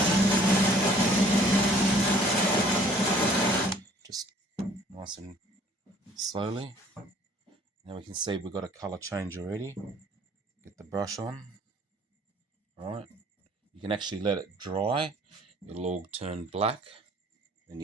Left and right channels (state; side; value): normal; both; correlation 0.56